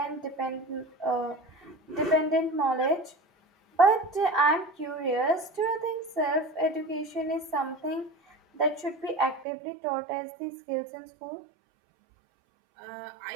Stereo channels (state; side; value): drops out; left; at 9.5 s